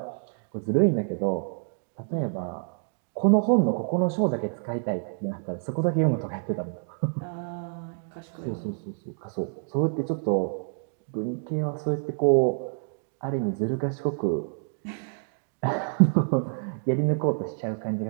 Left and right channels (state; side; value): silent; left; 60 dB below the other